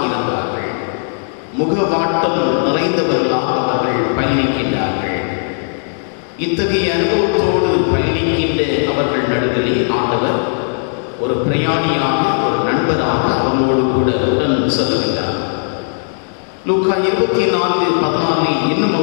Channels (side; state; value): right; silent; 69 dB below the other